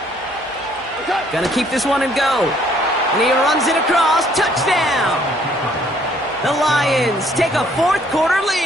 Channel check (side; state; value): both; normal; correlation 0.63